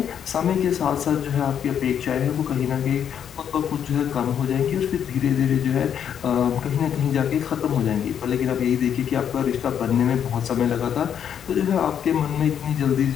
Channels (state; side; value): quieter; right; 8.7 dB